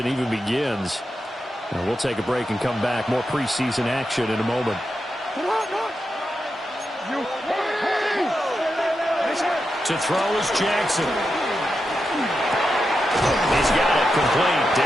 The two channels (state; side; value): normal; both; correlation 0.88